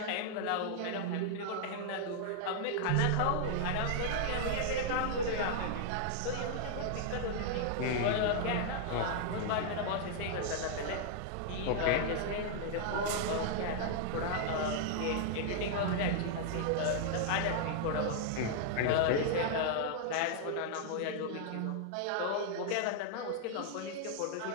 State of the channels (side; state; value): both; different; correlation -0.01